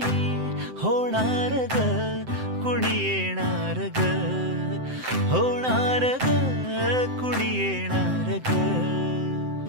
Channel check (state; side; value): late; left; 7.8 ms